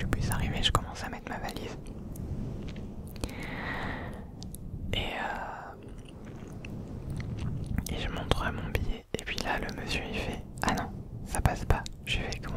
bus arrivait, je commence à mettre ma valise. Et je montre mon billet. Et puis là le monsieur il fait ah non, ça passe pas. Je fais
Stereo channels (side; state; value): both; identical; correlation 1.00